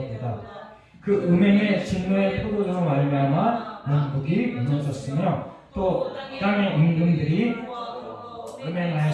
그 음행의 진노의 포도주로 말미암아 문국이 무너졌으며 또 땅의 임금들이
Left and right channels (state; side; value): identical; both; correlation 1.00